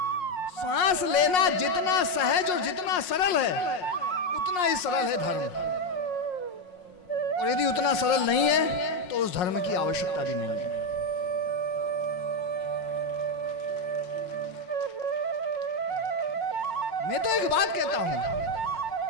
सांस लेना जितना सहज और जितना सरल है उतना ही सरल है धर्म। और यदि उतना सरल नहीं है तो उस धर्म की आवश्यकता भी नहीं है। मैं तो एक बात कहता हूं,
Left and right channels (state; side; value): late; right; 5.5 ms